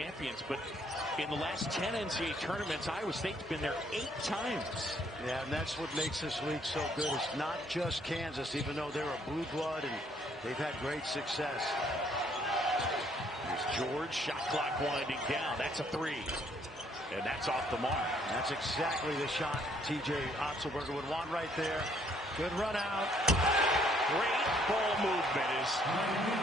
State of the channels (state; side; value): normal; both; correlation 0.66